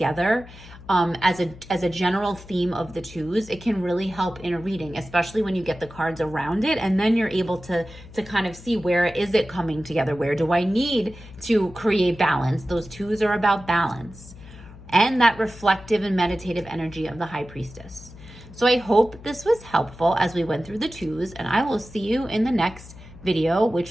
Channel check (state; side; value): noise; left; hum, 18 dB below the sound